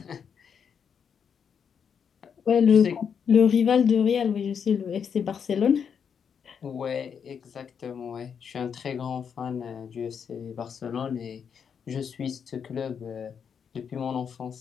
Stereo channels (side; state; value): right; quieter; 7.1 dB